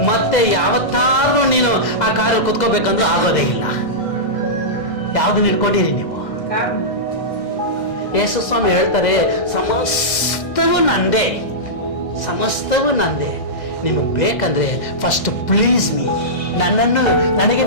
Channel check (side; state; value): right; late; 2.0 ms